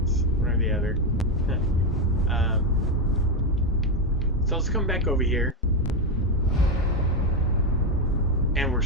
one or the other. So let's come back over here, and we're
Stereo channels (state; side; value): normal; both; correlation 0.08